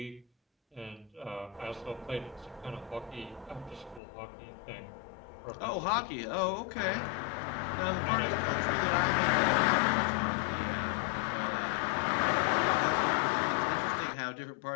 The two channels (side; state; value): right; drops out; at 4.0 s